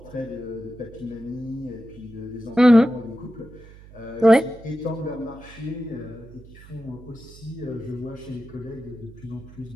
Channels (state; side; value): noise; right; hum, 20 dB below the sound